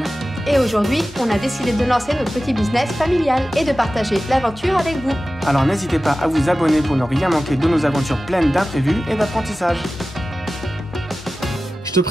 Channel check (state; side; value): normal; both; correlation 0.95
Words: Et aujourd'hui, on a décidé de lancer notre petit business familial et de partager l'aventure avec vous. Alors n'hésitez pas à vous abonner pour ne rien manquer de nos aventures pleines d'imprévus et d'apprentissage. Je te